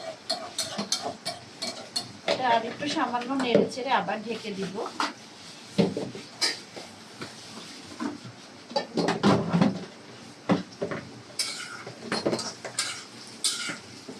এটা আর একটু সামান্য নেড়ে চেড়ে আবার ঢেকে দিব।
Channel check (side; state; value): both; identical; correlation 1.00